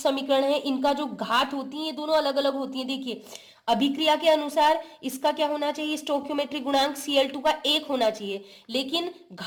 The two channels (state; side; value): identical; both; correlation 1.00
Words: है, इनका जो घात होती है, ये दोनों अलग अलग होती है। देखिए अभिक्रिया के अनुसार इसका क्या होना चाहिए? स्टोइकियोमेट्रिक गुणांक Cl2 का 1 होना चाहिए, लेकिन